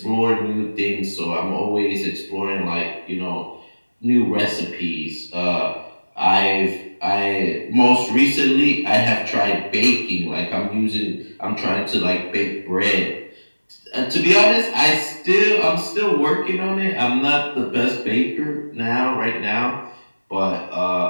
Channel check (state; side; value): inverted; both; correlation -1.00